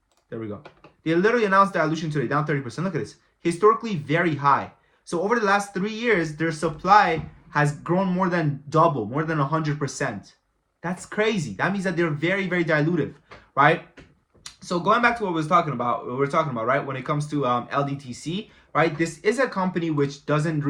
There we go. They literally announced dilution today, down 30%. Look at this. Historically very high. So over the last 3 years, their supply has grown more than double, more than 100%. That's crazy. That means that they're very, very dilutive, right? So going back to what we're talking about, right? When it comes to Ldtc, right? This is a company which doesn't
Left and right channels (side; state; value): both; identical; correlation 1.00